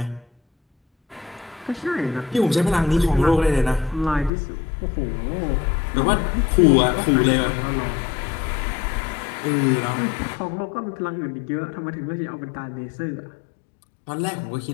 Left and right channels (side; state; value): right; drops out; at 4.3 s